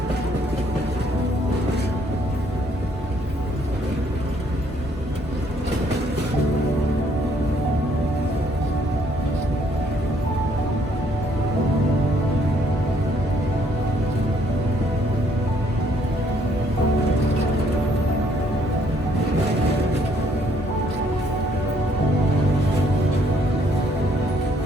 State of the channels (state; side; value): normal; both; correlation 0.67